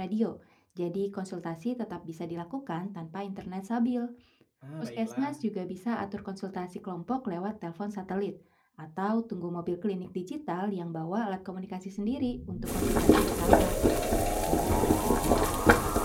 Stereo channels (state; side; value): identical; both; correlation 1.00